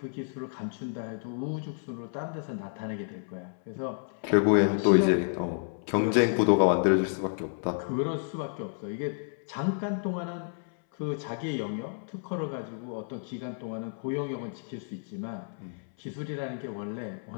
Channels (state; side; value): silent; right; 58 dB below the other